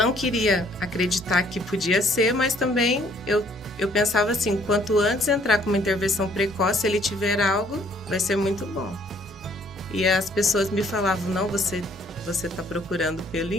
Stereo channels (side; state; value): both; normal; correlation 0.62